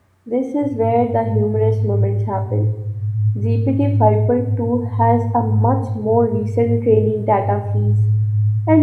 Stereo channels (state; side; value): identical; both; correlation 1.00